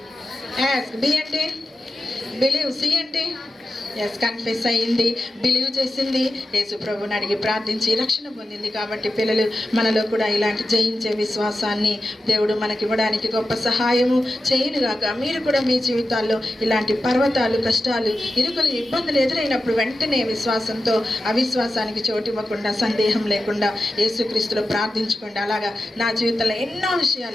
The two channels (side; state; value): both; normal; correlation 0.92